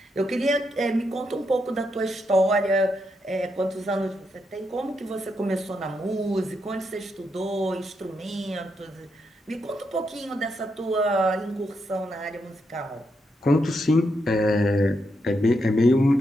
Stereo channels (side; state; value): both; normal; correlation 0.81